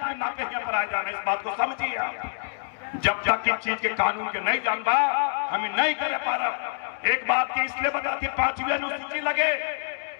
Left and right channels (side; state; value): right; silent; digital silence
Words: पर आ जाना, इस बात को समझिए आप। जब तक इस चीज के कानून के नहीं जानबा हमें नहीं करे पा रहा। एक बात की इसलिए बताती, 5वीं अनुसूची लगे,